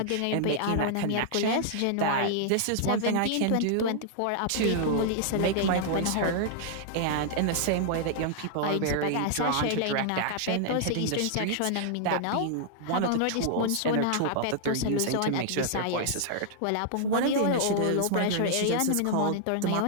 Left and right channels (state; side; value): different; both; correlation -0.01